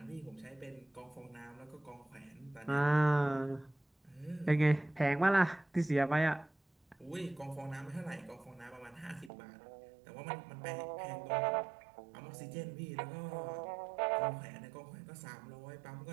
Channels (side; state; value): left; drops out; at 9.3 s